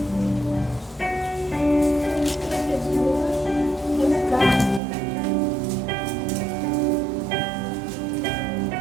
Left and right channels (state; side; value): drops out; left; at 4.8 s